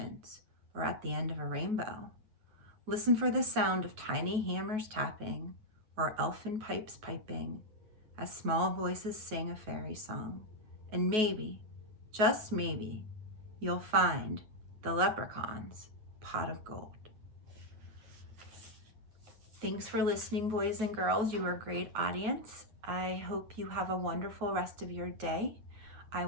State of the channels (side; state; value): left; late; 9.3 ms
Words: or at the end of a rainbow. Listen for the sound of tiny hammers tapping, or elfin pipes piping, as small voices sing a fairy song. And maybe, just maybe, you'll find the leprechaun's pot of gold. Thanks for listening, boys and girls. You are a great audience. I hope you have a wonderful rest of your day. I